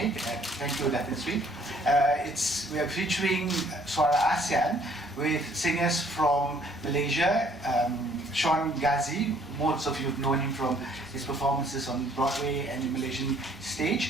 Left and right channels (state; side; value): normal; both; correlation 0.61